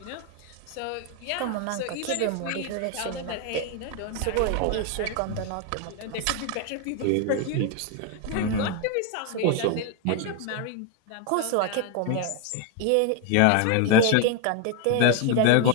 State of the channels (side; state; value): both; different; correlation 0.01